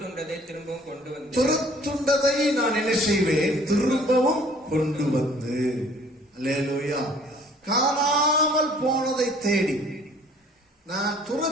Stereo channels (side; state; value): both; normal; correlation 0.55